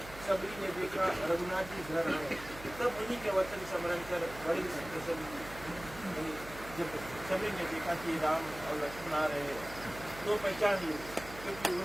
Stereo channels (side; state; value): right; noise; hum, 15 dB below the sound